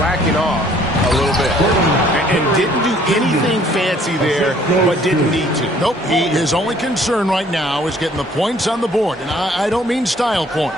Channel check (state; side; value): normal; both; correlation 0.59